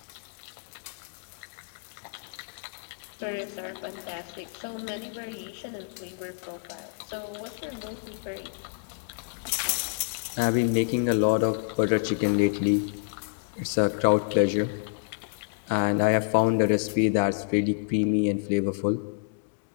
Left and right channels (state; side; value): silent; right; digital silence